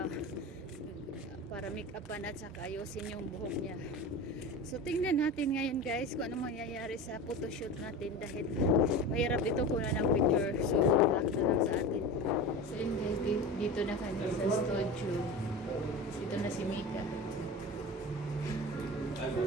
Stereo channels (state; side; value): normal; both; correlation 0.30